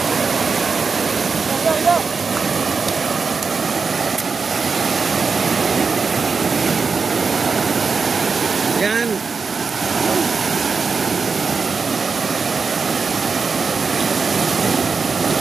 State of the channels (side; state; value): left; quieter; 5.0 dB